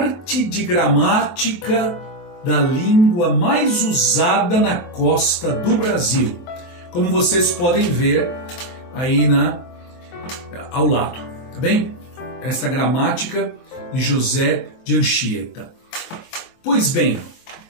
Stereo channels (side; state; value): right; late; 22 ms